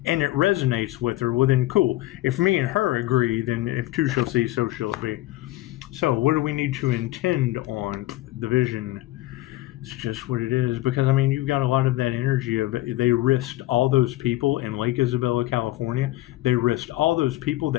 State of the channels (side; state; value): right; quieter; 17.0 dB